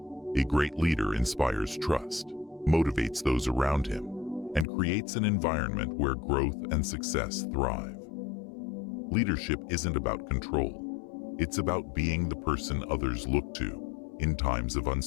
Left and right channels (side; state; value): right; drops out; at 4.7 s